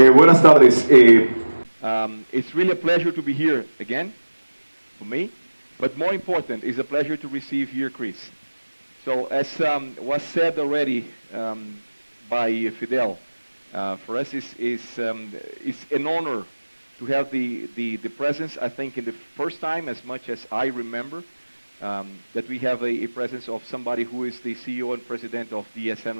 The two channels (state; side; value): inverted; both; correlation -1.00